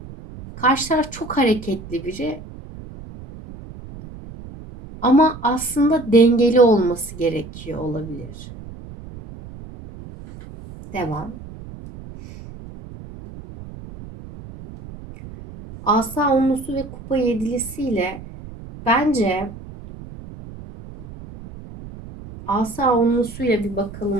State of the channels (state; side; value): noise; right; rumble, 15 dB below the sound